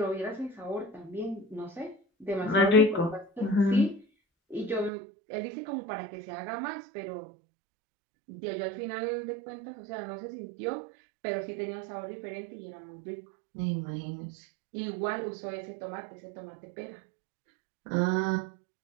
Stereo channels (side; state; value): left; drops out; at 4.9 s